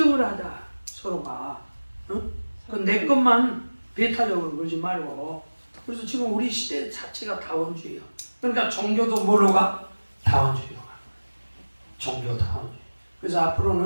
하자. 서로가. 내 것만 배타적으로 그러지 말고. 그래서 지금 우리 시대 자체가 다원주의야. 그러니까 종교도 뭐로 가? 다원주의로 가. 종교 다원주의. 그래서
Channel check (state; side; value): inverted; both; correlation -1.00